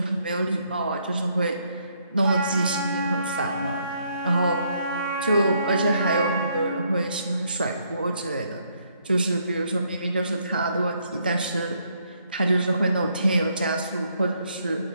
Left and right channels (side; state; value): both; inverted; correlation -0.71